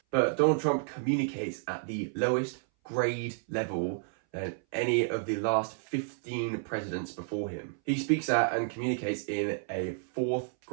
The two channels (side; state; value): left; silent; 57 dB below the other